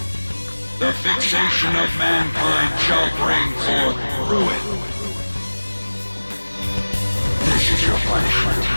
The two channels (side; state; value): both; inverted; correlation -1.00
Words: The fixation of mankind shall bring forth ruin. This is your punishment.